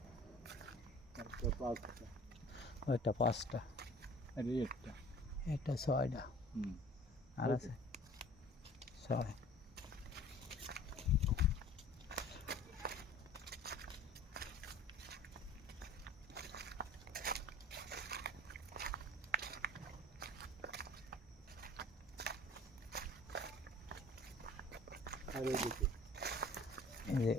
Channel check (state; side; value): normal; both; correlation 0.47